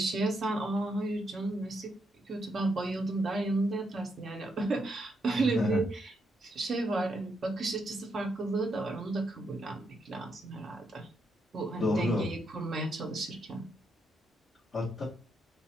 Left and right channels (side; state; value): both; normal; correlation 0.80